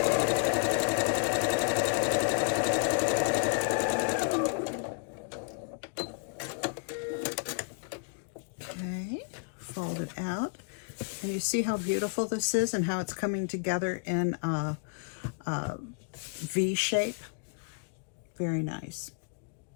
Okay, fold it out. And you see how beautiful this is and how it's coming together in a V shape? Very nice.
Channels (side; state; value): right; quieter; 38.7 dB